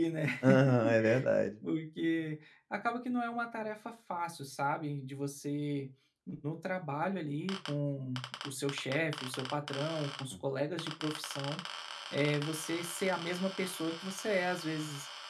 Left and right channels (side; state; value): both; identical; correlation 1.00